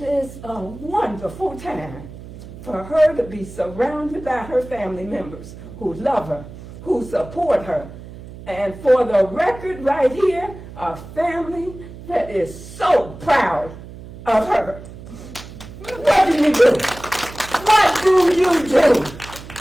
a wonderful time for her to be surrounded by her family members who love her, who support her, and for the record right here, a family that is so proud of her. What do you do? What do you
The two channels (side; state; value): right; noise; hum, 15 dB below the sound